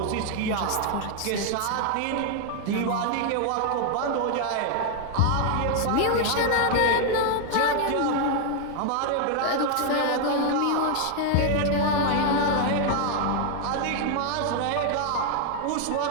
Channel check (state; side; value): different; both; correlation 0.00